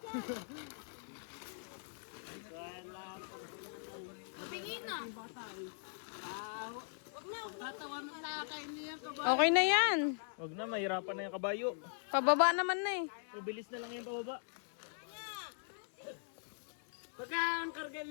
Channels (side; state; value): right; silent; digital silence